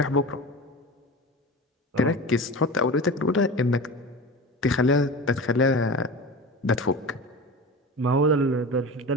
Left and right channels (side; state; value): both; normal; correlation 0.30